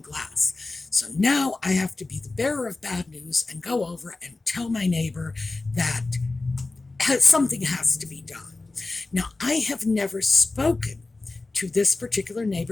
glass. So now I have to be the bearer of bad news and go over and tell my neighbor that something has to be done. Now, I have never spoken to this particular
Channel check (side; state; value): right; quieter; 3.3 dB